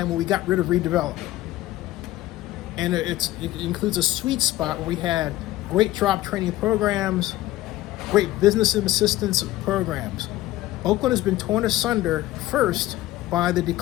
when we got rid of redevelopment. And it includes a sweet spot where we had great job training programs, great business assistance programs. Oakland has been torn asunder first by the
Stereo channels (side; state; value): right; quieter; 16.0 dB